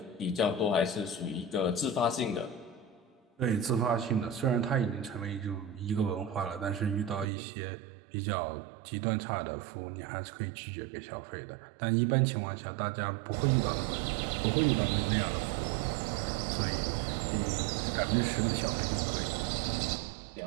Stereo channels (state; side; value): drops out; left; at 7.3 s